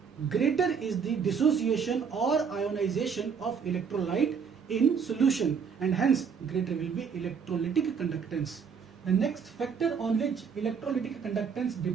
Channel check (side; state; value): left; quieter; 6.4 dB